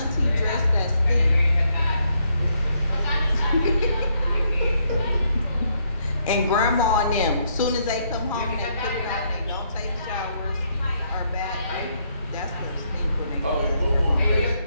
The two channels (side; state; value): both; inverted; correlation -0.74